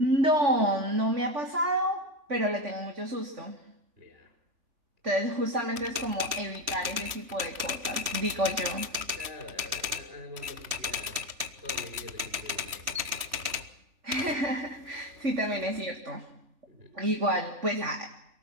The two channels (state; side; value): late; left; 3.1 ms